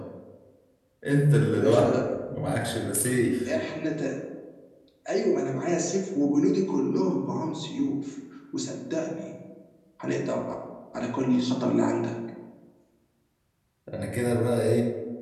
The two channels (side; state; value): both; identical; correlation 1.00